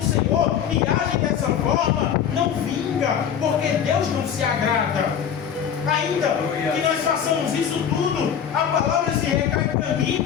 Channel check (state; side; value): quieter; right; 8.4 dB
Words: Senhor e agem dessa forma, não vinga, porque Deus não se agrada. Ainda que nós façamos isso tudo, a palavra se recai para mim e